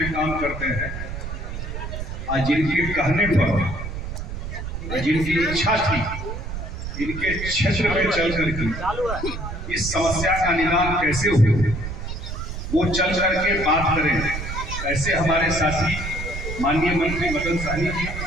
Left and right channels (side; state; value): right; noise; rumble, 6 dB below the sound